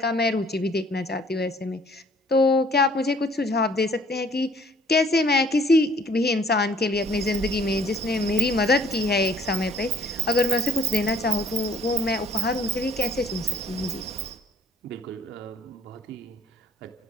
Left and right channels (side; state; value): both; normal; correlation 0.57